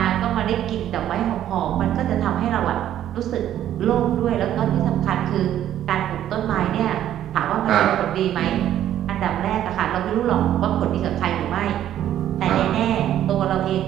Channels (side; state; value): left; quieter; 11.5 dB